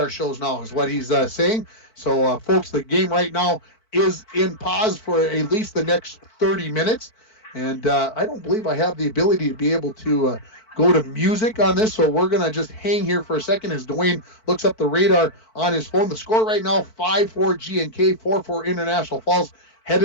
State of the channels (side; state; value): right; late; 4.5 ms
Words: shows now, is what he's saying. So, folks, the game right now is in pause for at least the next 30 minutes. And I don't believe I have the ability to be able to go to music on this, so we're going to just hang here for a second as Dwayne looks up the radar on his phone. The score right now, 5-4 GNK, 4-4 International Falls,